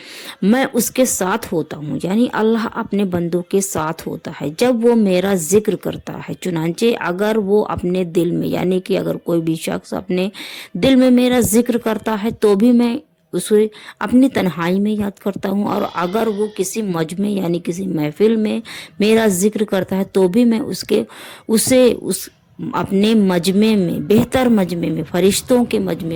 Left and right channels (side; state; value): both; identical; correlation 1.00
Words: मैं उसके साथ होता हूँ। यानी अल्लाह अपने बंदों के साथ होता है जब वो मेरा जिक्र करता है। चुनांचे अगर वो अपने दिल में, यानी कि अगर कोई भी शख्स अपने दिल में मेरा जिक्र करता है तो भी मैं उसे अपनी तन्हाई में याद करता हूँ, और अगर वो किसी मजमे यानी किसी महफिल में मेरा जिक्र करता है तो भी मैं उस अपने मजमे में, बेहतर मजमे में, फरिश्तों के